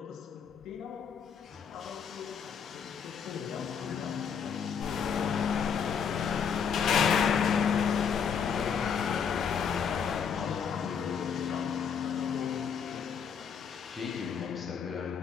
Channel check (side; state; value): right; quieter; 7.0 dB